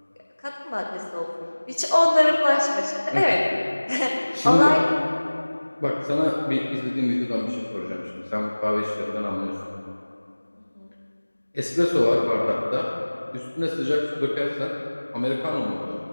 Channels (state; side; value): inverted; both; correlation -1.00